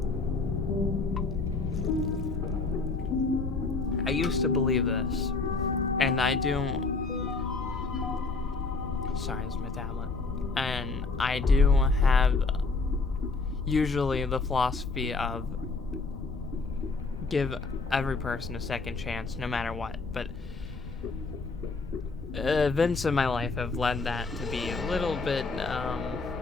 I used to believe this. And I do... Sorry, this is my tablet. And I do have usually the philosophy of give every person a second chance, no matter what. But events in my life have led that to be a little bit,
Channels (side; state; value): right; quieter; 3.9 dB